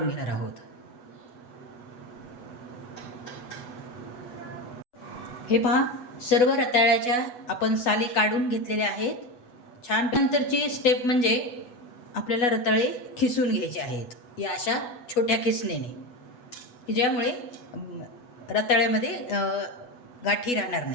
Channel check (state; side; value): late; right; 8.2 ms